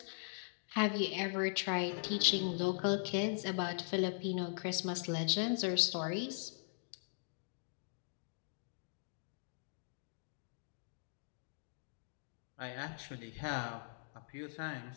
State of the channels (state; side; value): silent; right; digital silence